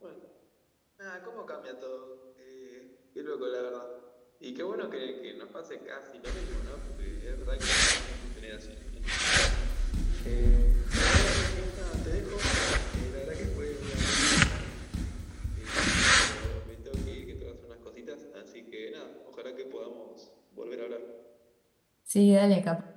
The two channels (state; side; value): identical; both; correlation 1.00